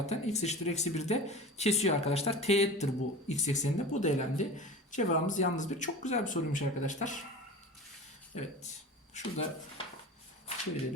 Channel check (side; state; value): both; normal; correlation 0.34